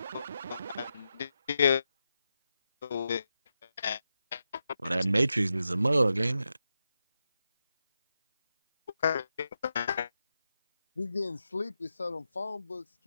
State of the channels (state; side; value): inverted; both; correlation -0.88